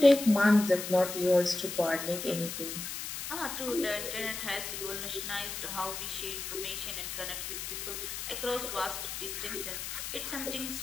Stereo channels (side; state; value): left; noise; hiss, 6 dB below the sound